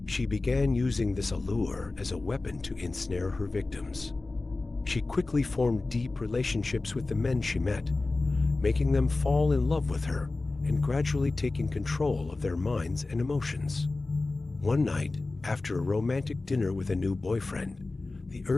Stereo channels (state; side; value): quieter; right; 3.3 dB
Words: She began using this allure as a weapon to ensnare her victims. She quickly formed deep relationships with the men she met, making them fall in love with her and gradually taking control of their minds and emotions. One night, after a romantic dinner with a new boyfriend, the